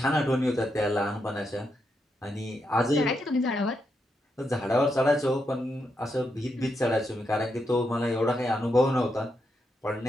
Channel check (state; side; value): normal; both; correlation 0.83